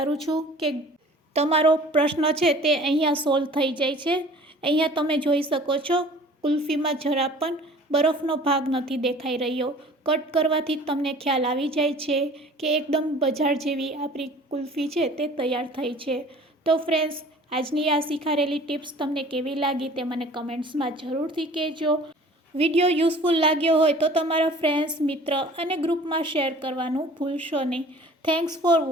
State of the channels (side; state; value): both; normal; correlation 0.47